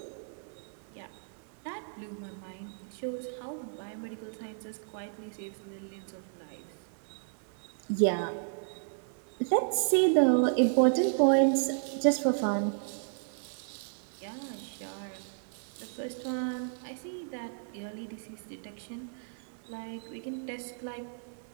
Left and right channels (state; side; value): silent; left; digital silence